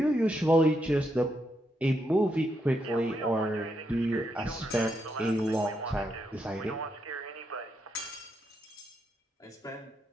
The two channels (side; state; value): both; normal; correlation 0.80